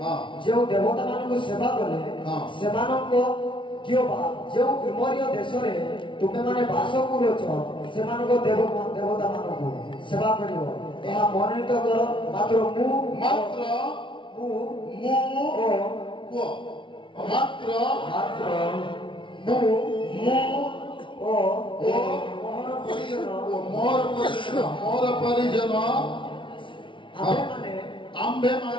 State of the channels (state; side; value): late; right; 0.24 ms